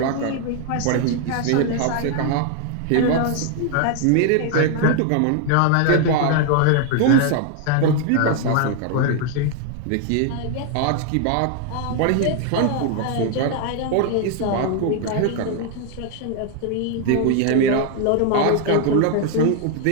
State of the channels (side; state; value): both; different; correlation 0.00